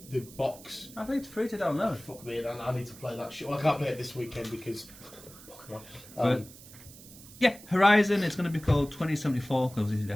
box. I think it's free to download. Fuck me, and I need to play that shit. Well, I can't play it this weekend because... yeah, Horizon, it's going to be called 2074 because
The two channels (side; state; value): right; noise; hiss, 19 dB below the sound